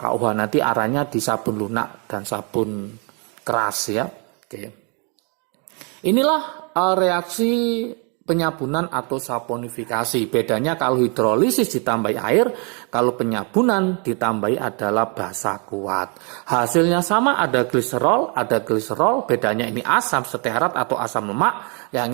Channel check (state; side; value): quieter; left; 35.5 dB